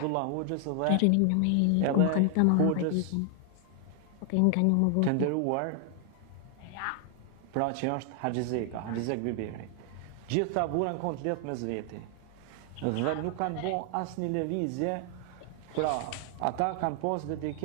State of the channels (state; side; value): different; both; correlation 0.00